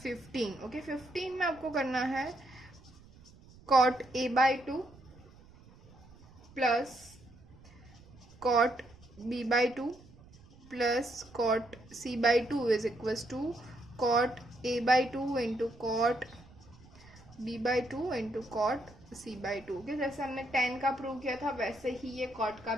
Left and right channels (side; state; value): right; noise; rumble, 23 dB below the sound